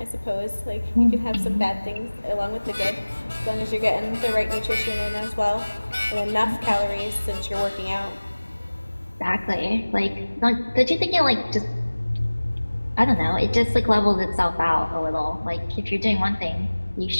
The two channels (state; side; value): inverted; both; correlation -1.00